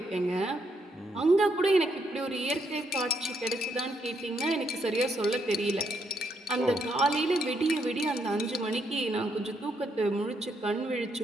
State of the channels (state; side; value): normal; both; correlation 0.76